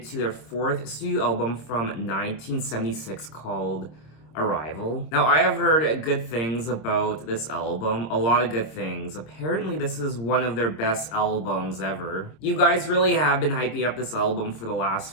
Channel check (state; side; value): late; right; 26 ms